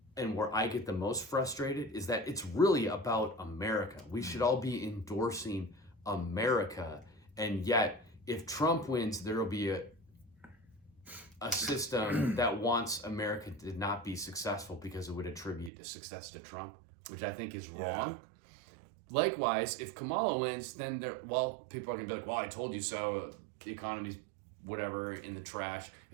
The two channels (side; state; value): left; drops out; at 15.7 s